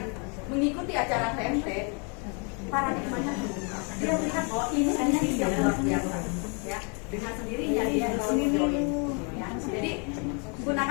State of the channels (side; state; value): right; quieter; 36.6 dB